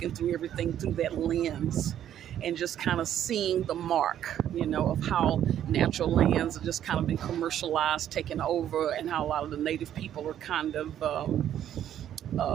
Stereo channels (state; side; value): quieter; left; 10.7 dB